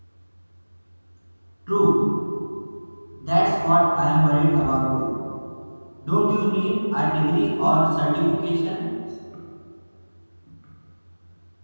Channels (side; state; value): both; inverted; correlation -1.00